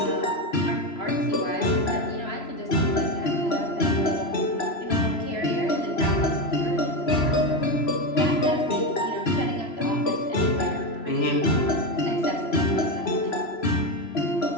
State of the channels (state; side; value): late; right; 3.0 ms